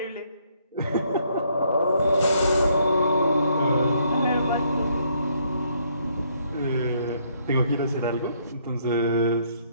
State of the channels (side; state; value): both; inverted; correlation -0.69